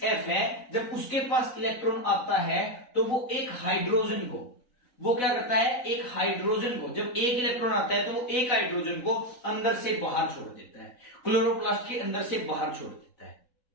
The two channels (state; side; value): late; right; 3.9 ms